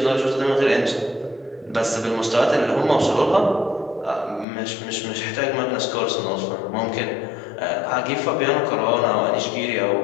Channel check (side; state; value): right; drops out; at 4.5 s